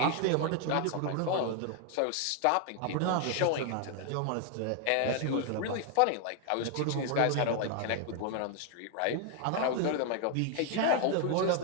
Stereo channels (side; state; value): both; different; correlation 0.00